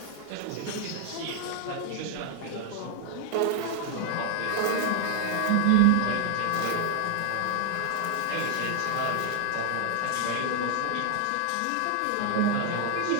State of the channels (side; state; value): both; different; correlation 0.00